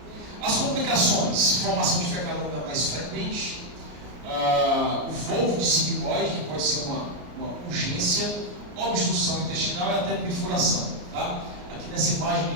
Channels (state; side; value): late; left; 33 ms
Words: As complicações: formação de fecalanda mais frequente, o volvo de sigmoide, que pode ser uma urgência, obstrução intestinal e até perfuração. Tá? Aqui nessa imagem de